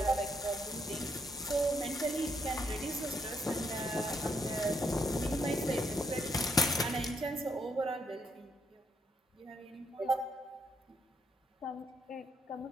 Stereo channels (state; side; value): normal; both; correlation 0.74